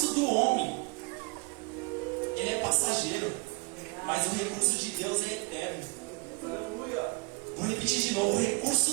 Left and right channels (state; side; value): quieter; left; 28.8 dB